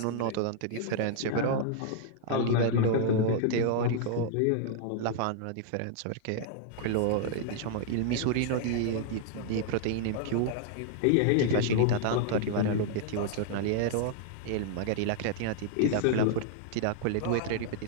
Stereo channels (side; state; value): both; different; correlation -0.01